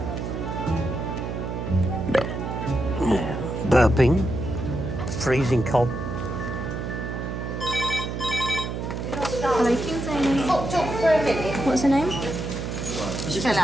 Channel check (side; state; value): right; noise; hum, 4 dB below the sound